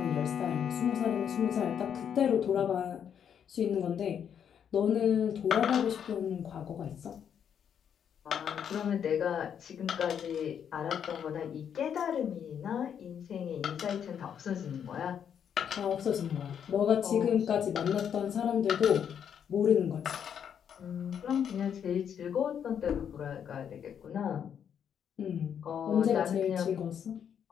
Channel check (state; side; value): quieter; right; 8.3 dB